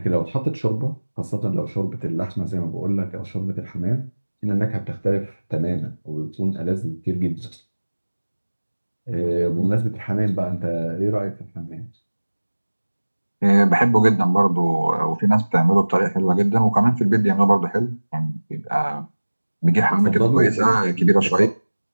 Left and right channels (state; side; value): inverted; both; correlation -1.00